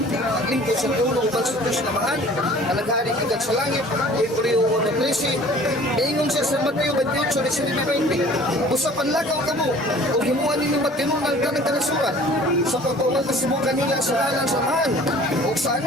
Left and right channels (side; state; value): both; normal; correlation 0.49